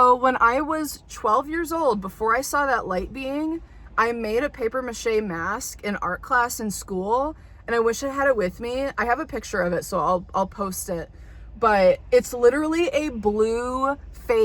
when I was 12 years old, before I saw that light being, I made a paper mache mask in art class in school. And I wish I had it with me. I have a picture of it, so I'll post it. But it's literally a blue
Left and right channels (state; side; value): identical; both; correlation 1.00